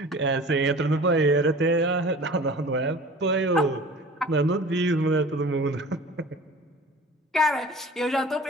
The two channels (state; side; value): normal; both; correlation 0.42